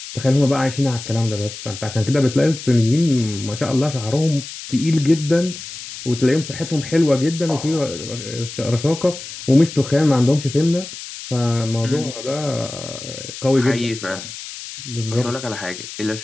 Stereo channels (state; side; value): noise; left; hiss, 11 dB below the sound